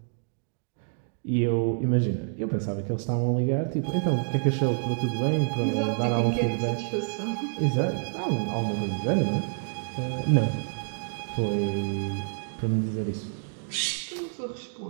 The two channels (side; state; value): left; silent; digital silence